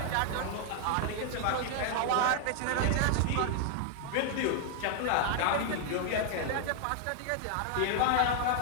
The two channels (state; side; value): different; both; correlation 0.00